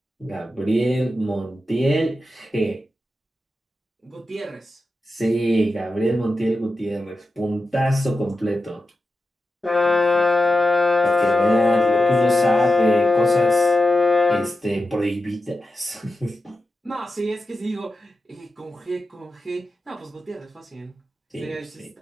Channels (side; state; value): both; normal; correlation 0.91